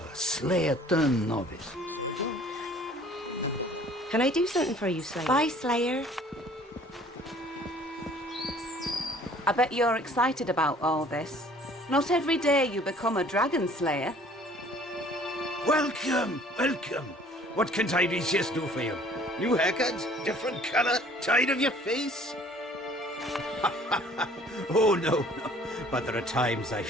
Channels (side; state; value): both; normal; correlation 0.53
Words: slayer turned novice. Can I do something for you, Slayer? Bye, Slayer. I bet you're excited about all this. Not every day you become a dragon slayer. Welcome, welcome. What can Tiresias do for you? New haircut? Different color? Tired of your face? Oh, no. But there are times I